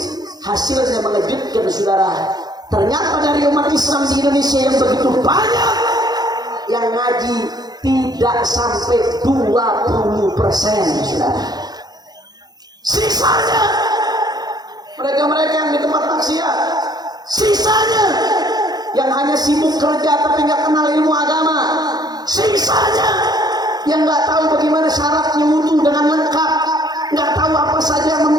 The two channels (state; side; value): late; left; 0.19 ms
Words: hasilnya mengejutkan, saudara. Ternyata dari umat Islam di Indonesia yang begitu banyak, yang ngaji tidak sampai 20%, saudara. Sisanya mereka-mereka yang di tempat maksiat, sisanya yang hanya sibuk kerja tapi nggak kenal ilmu agama, sisanya yang nggak tahu bagaimana syaratnya wudu dengan lengkap, nggak tahu apa saja yang